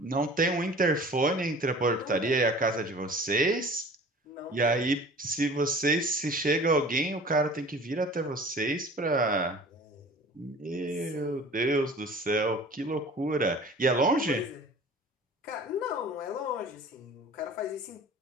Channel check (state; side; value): normal; both; correlation 0.44